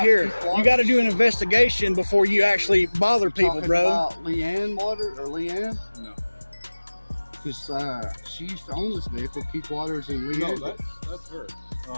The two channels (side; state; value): both; inverted; correlation -1.00